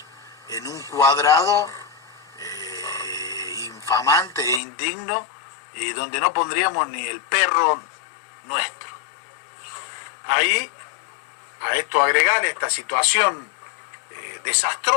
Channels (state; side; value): drops out; right; at 4.6 s